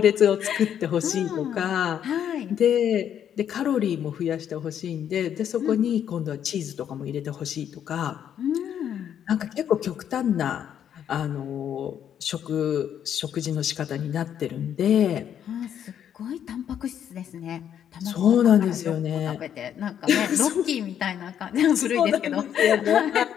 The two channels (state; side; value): quieter; right; 9.4 dB